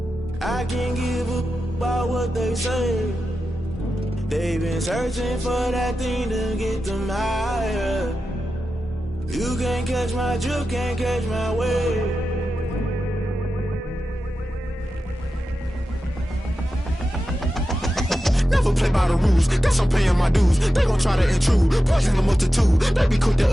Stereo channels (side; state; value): both; normal; correlation 0.92